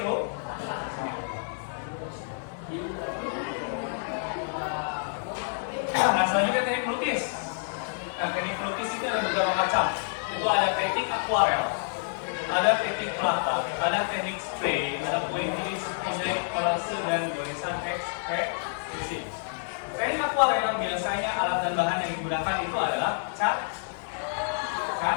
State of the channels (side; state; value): right; silent; 55 dB below the other